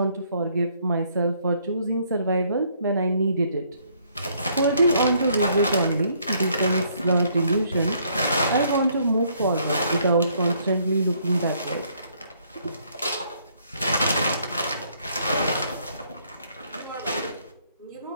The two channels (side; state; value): both; inverted; correlation -0.67